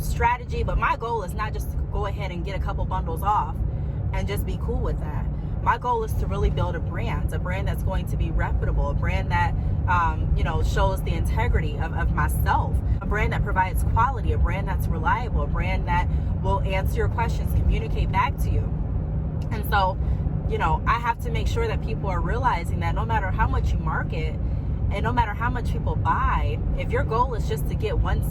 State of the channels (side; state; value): both; identical; correlation 1.00